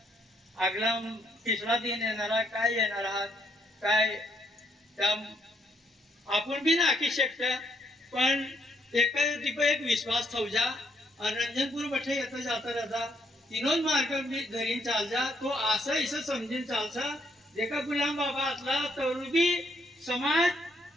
आगला तिसरा दिन येणारा काय येणार आहात काय त्या आपण बी नाकी शकता पण एक विश्वास ठेवजा रंजनपूर बठे येतो जाता राहता तीनों मार्ग धरीन चाल जा तो असं इसं समजून चालसा देखा गुलाम बाबा आतला तरुबी समाज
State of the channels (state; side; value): normal; both; correlation 0.72